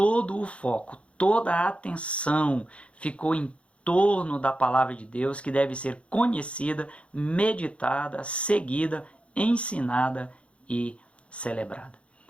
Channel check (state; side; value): late; right; 0.061 ms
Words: o foco, toda a atenção ficou em torno da palavra de Deus, que deve ser conhecida, meditada, seguida, ensinada e celebrada.